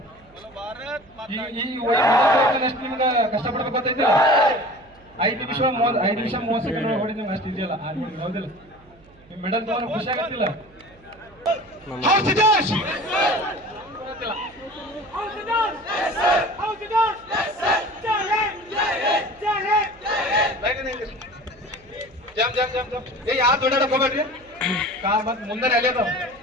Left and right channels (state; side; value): noise; right; hum, 27 dB below the sound